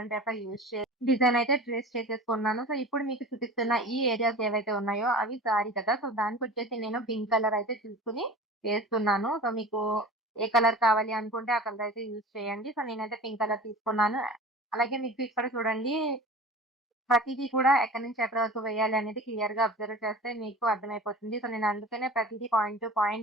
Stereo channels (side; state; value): both; normal; correlation 0.37